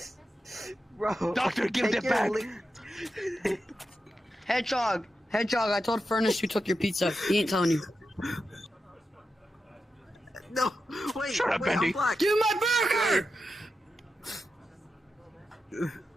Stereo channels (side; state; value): both; normal; correlation 0.89